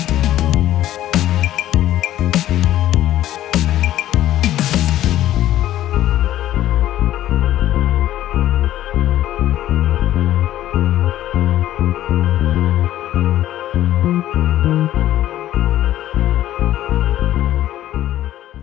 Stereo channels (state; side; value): quieter; right; 13.3 dB